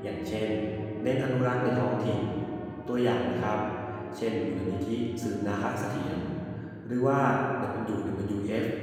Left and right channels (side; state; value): both; identical; correlation 1.00